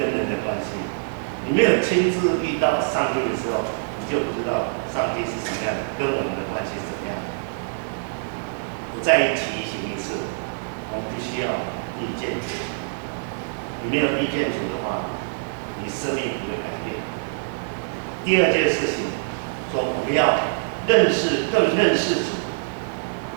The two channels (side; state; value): left; silent; 62 dB below the other